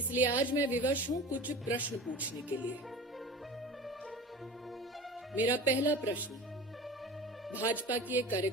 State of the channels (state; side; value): normal; both; correlation 0.35